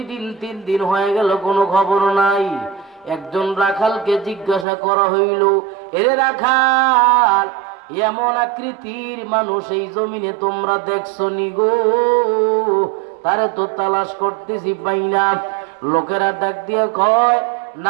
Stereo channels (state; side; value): drops out; left; at 4.7 s